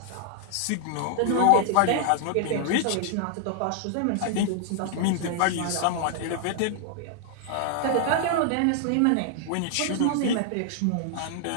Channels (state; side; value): different; both; correlation -0.01